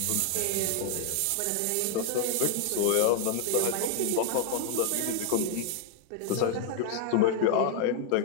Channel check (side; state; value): both; different; correlation 0.01